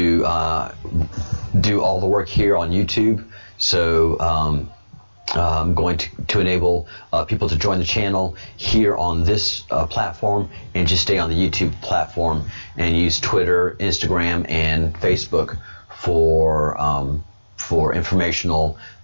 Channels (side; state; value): both; inverted; correlation -1.00